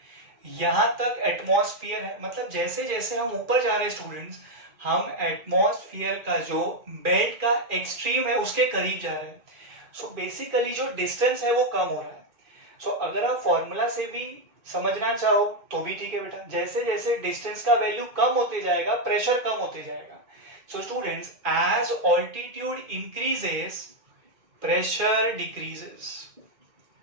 यहां तक एटमॉस्फेयर है, मतलब जैसे जैसे हम ऊपर जा रहे हैं स्टूडेंट्स, हम एटमॉस्फेयर का जो बेल्ट का एक्सट्रीम है उसके करीब जा रहे हैं। सो बेसिकली जो डिस्टेंस है वो कम हो रहा है। सो अगर आप फॉर्मूला से भी समझना चाहो तो भी ठीक है बेटा, जैसे जैसे डिस्टेंस का वैल्यू कम होते जाएगा, प्रेशर कम होते जाएगा। So students, as altitude increases, pressure decreases.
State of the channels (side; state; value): left; late; 2.4 ms